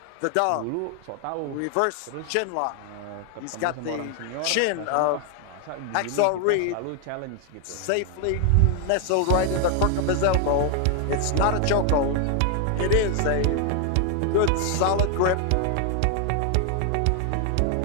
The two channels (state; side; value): different; both; correlation 0.00